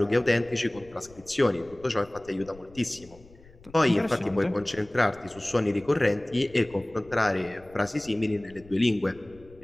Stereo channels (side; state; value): left; noise; rumble, 23 dB below the sound